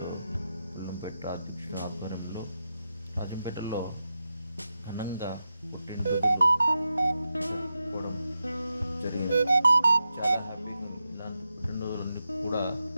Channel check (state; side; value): inverted; both; correlation -0.89